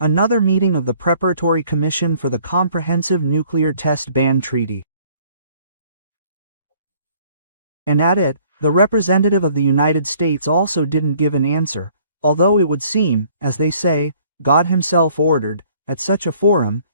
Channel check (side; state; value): both; inverted; correlation -0.59